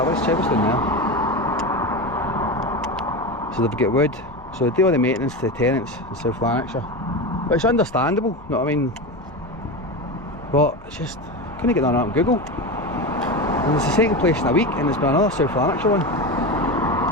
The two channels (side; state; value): left; noise; hum, 27 dB below the sound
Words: Let's check what's down there. So they've got wood. So they do all the maintenance to the tenants in South Lanarkshire. But it's understandable, you know what I mean? But it's just, couldn't get none of that on Google. And it's the second place in a week, and there's been another South Lanarkshire one.